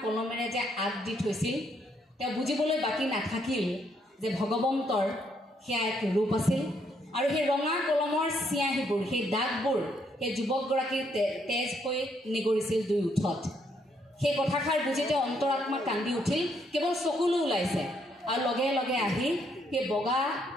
কলমেৰে যে আগ দি থৈছিল, তেওঁ বুজিবলৈ বাকী নাথাকিল যে ভগৱন্তৰ সেয়া এক ৰূপ আছিল। আৰু সেই ৰঙা কলমৰ চিয়াহীবোৰ, সেই দাগবোৰ সেই যুৱকগৰাকীৰ তেজ হৈ নিগৰিছিল দুই ওঠত। সেই কথাষাৰ বুজি তেওঁ অন্তৰাত্মা কান্দি উঠিল, কেৱল চকুলো ওলাইছে। আৰু লগে লগে আহি সেই বগা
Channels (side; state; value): both; normal; correlation 0.72